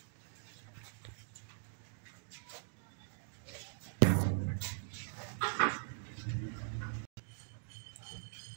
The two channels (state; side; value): silent; left; digital silence